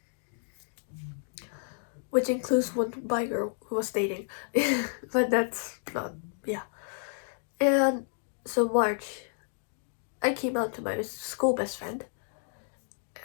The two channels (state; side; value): silent; right; digital silence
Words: which includes one bi girl who was dating. But that's not, yeah. And so March, I came out to my school best friend